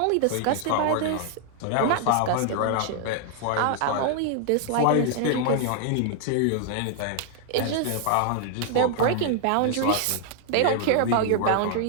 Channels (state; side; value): different; both; correlation 0.00